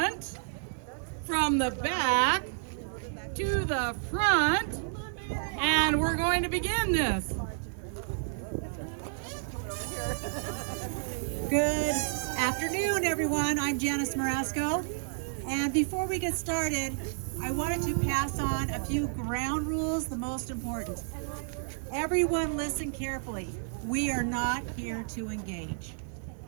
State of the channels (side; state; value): left; silent; digital silence